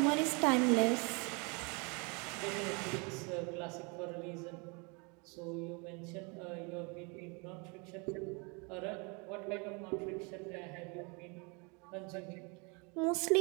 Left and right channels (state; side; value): quieter; left; 31.7 dB